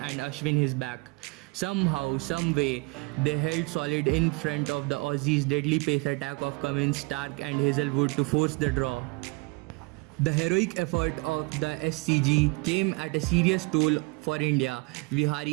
Ashwin his back. Somehow, some way, they held solid in front of the Aussies' deadly pace attack of Cummins, Stark and Hazlewood to force the draw. The heroic effort of the SCG came at a serious toll for India.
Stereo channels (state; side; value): quieter; left; 27.2 dB